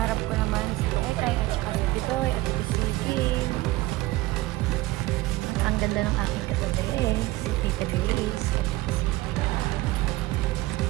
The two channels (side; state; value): left; quieter; 18.9 dB